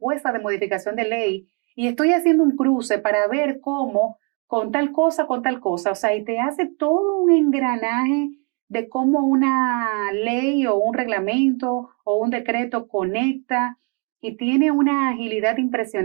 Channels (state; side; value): quieter; left; 33.9 dB